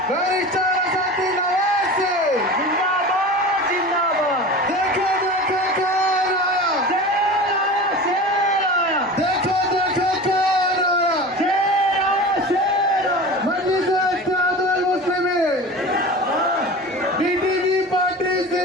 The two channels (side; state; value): both; normal; correlation 0.33